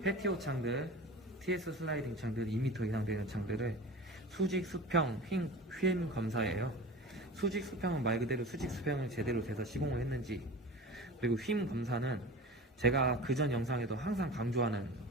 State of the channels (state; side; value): normal; both; correlation 0.34